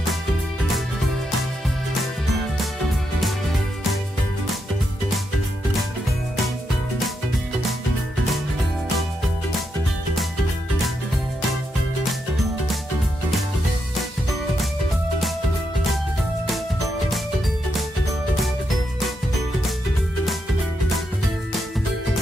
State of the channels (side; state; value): both; normal; correlation 0.82